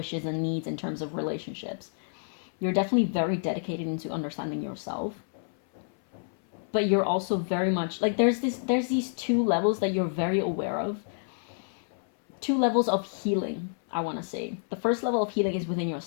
and needs in terms of relationships. You're definitely very dedicated into understanding yourself. But you're also very much like there's these two levels that you're very aware of. Two levels of healing, I want to say. The first level of healing is within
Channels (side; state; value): right; silent; 59 dB below the other